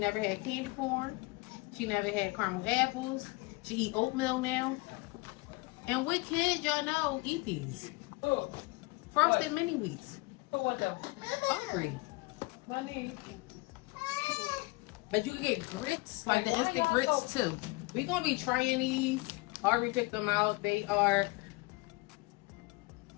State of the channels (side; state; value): right; quieter; 24.6 dB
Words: had candy corn. She never had caramel apples. She eat oatmeal now. And what kids y'all know eat these? Who? Frosted mini wheats. Who want them? Hungry. Money. But you can get grits, like the instant grits too. We're gonna be trying these. Already picked them out. They are...